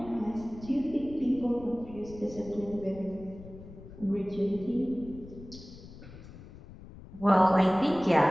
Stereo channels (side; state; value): left; noise; rumble, 17 dB below the sound